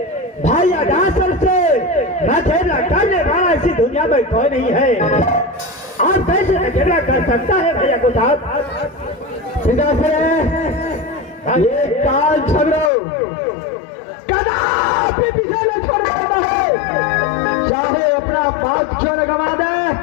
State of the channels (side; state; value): right; drops out; at 12.9 s